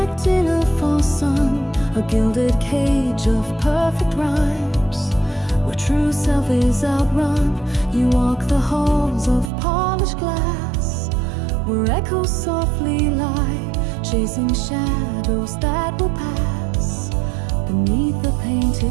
Trapped in a false sun, a gilded cage of perfect rhymes, where true self is outrun. You walk the halls of polished glass, where echoes softly lie, chasing shadows that will pass beneath the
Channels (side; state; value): left; drops out; at 9.5 s